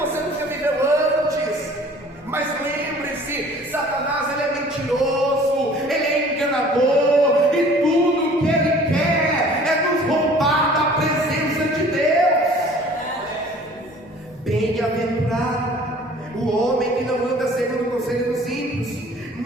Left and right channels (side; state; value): both; normal; correlation 0.50